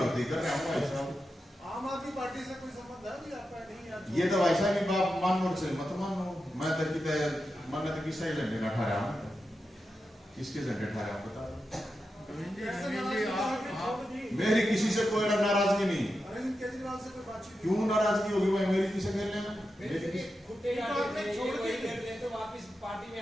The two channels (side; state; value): both; normal; correlation 0.89